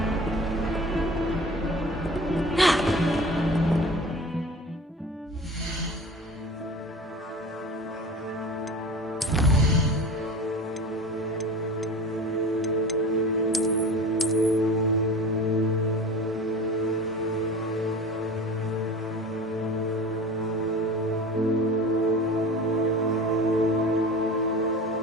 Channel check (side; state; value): both; normal; correlation 0.36